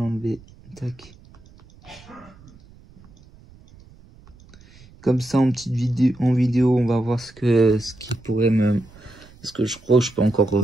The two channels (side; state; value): right; noise; rumble, 24 dB below the sound